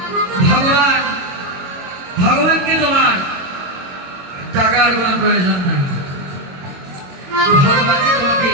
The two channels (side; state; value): left; late; 22 ms